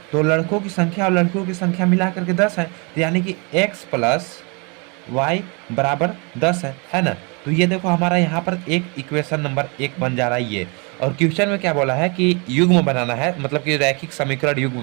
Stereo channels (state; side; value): quieter; left; 31.9 dB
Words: तो लड़कों की संख्या और लड़कियों की संख्या मिला करके 10 है, तो यानी कि x प्लस वाई बराबर 10 है ना। तो ये देखो हमारा यहाँ पर एक इक्वेशन नंबर 1 बन जा रहा है ये। और क्वेश्चन में क्या बोला है कि युग्म बनाना है, मतलब कि रैखिक समीकरण